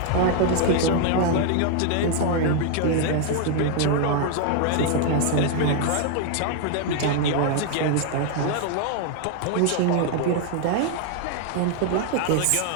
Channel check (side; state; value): both; different; correlation 0.00